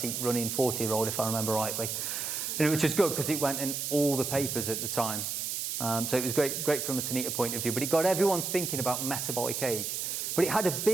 running 40-year-old, if I remember rightly. Which is good because it went in all the papers at the time. So it was great from a Tanita point of view, but it got everyone thinking about metabolic age. But it had a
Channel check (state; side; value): noise; right; hiss, 3 dB below the sound